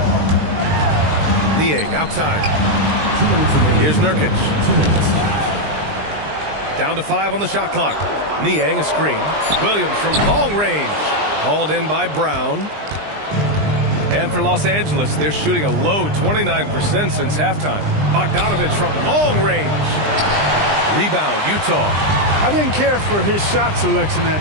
Niang outside. Here's Nurkic. Down to 5 on the shot clock. Niang a screen. Williams from long range. Hauled in by Brown. And for Los Angeles, they're shooting a low 29% since halftime. Bogdanovic from long range. Rebound, Utah. I didn't care for his shot selection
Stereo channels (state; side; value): late; left; 20 ms